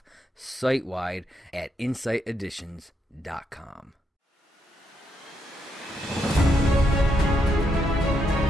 site-wide at insighteditions.com.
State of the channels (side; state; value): both; normal; correlation 0.78